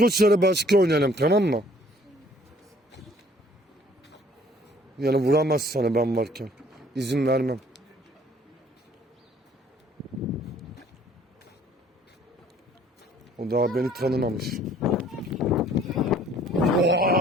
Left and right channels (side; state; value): both; normal; correlation 0.57